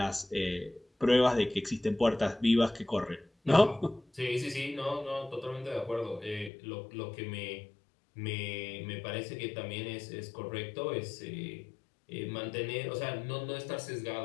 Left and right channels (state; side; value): drops out; right; at 6.5 s